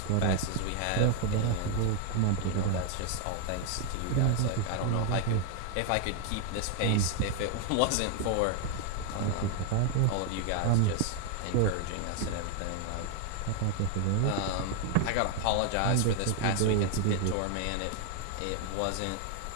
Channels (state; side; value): different; both; correlation 0.00